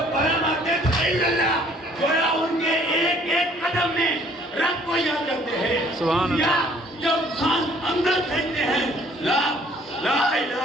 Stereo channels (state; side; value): normal; both; correlation 0.59